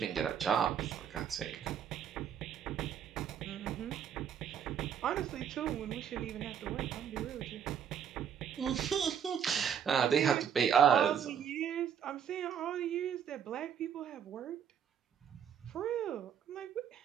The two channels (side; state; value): left; quieter; 8.4 dB